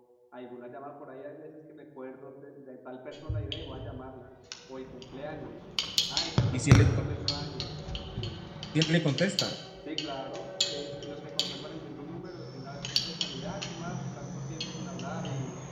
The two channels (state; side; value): identical; both; correlation 1.00